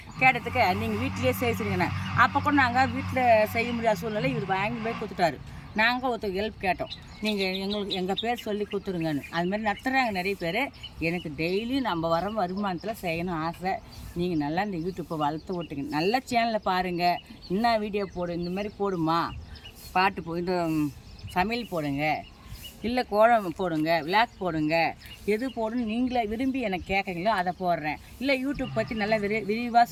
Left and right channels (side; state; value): both; identical; correlation 1.00